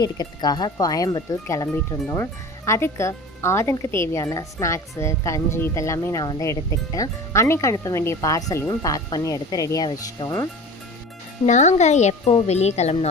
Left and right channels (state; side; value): normal; both; correlation 0.37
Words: எடுக்கிறதுக்காக கோயம்புத்தூர் கிளம்பிட்டு இருந்தோம். அதுக்கு ஆதனுக்கு தேவையான ஸ்நாக்ஸு, கஞ்சி இதெல்லாமே நான் வந்து எடுத்துக்கிட்டேன். அன்னைக்கு அனுப்ப வேண்டிய பார்சலையும் பேக் பண்ணி எடுத்து ரெடியாக வச்சிட்டோம். நாங்கள் எப்போ வெளியே